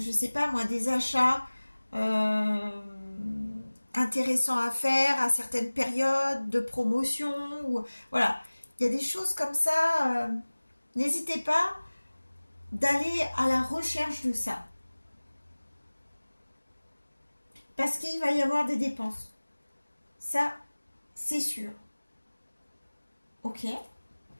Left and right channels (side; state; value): both; inverted; correlation -1.00